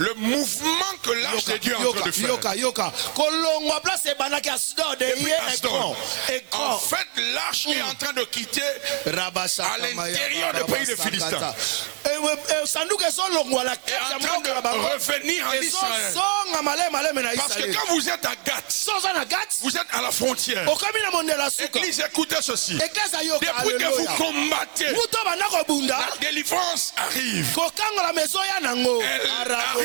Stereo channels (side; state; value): left; quieter; 40.0 dB